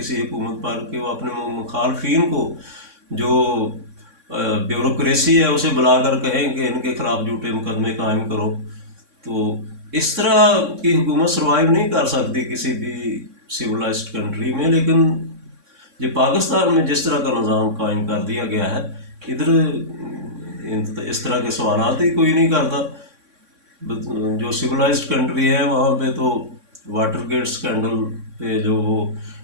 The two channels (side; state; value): left; late; 3.6 ms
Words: हुकूमत पर कि वो अपने मुखालफिन को, जो ब्यूरोक्रेसी है, उसे बुलाकर कहें कि इनके खिलाफ झूठे मुकदमे कायम करो। तो इस तरह की हुकूमत सर्वाइव नहीं कर सकती किसी भी सिविलाइज्ड कंट्री में। लेकिन ये पाकिस्तान में जिस तरह का निज़ाम कायम कर दिया गया है, इधर इस तरह के सवालात ही कोई नहीं करता। जो सिविलाइज्ड कंट्री है वहाँ पे तो वाटर गेट स्कैंडल पे जो वो